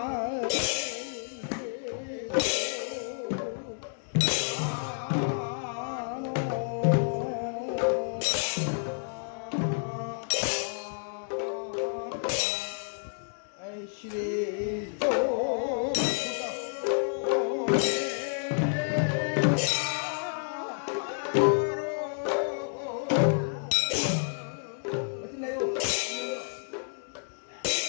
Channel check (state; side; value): silent; right; digital silence